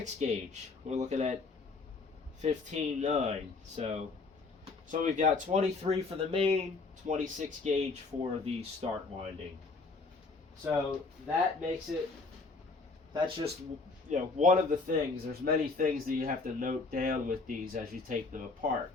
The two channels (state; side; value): quieter; right; 3.9 dB